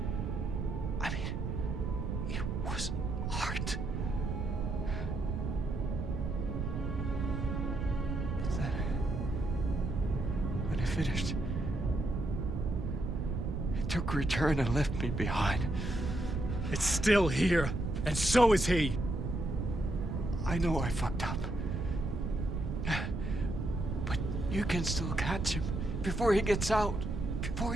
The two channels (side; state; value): right; noise; rumble, 2 dB below the sound